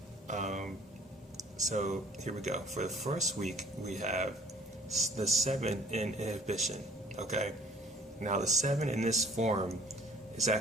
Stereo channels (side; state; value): both; normal; correlation 0.53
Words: so here we go. For the first week, we have the 7 in inhibition. Okay? Now, the 7 in this form is